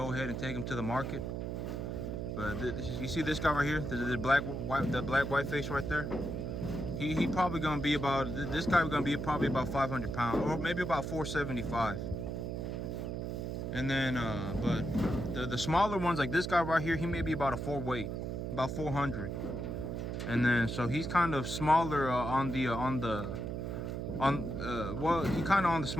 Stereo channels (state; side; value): noise; right; hum, 4 dB below the sound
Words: ahead and take them to the market. But you see this guy right here, the black white face right there. He probably gonna be about, this guy gonna be probably about 500 pounds, or maybe about 475. And then but the smaller ones, like this guy right here, he may be about a 4 weight, about 400. And then so he's kind of smaller well, he kind of on the